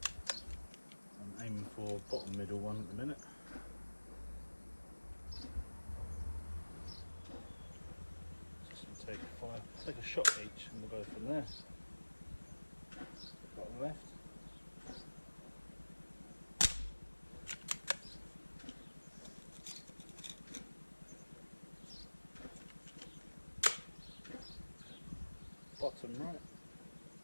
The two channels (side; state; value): both; inverted; correlation -1.00